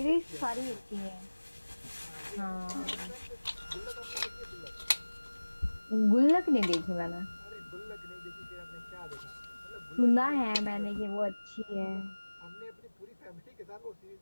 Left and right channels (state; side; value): inverted; both; correlation -1.00